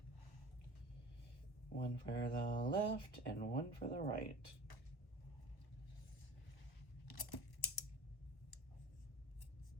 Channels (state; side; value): late; right; 1.1 ms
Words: One for the left and one for the right.